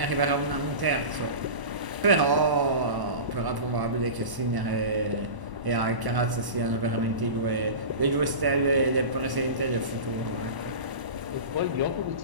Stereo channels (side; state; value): left; late; 1.1 ms